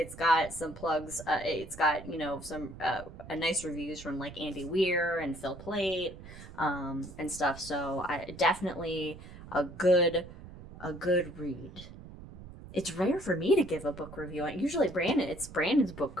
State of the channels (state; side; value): noise; right; rumble, 15 dB below the sound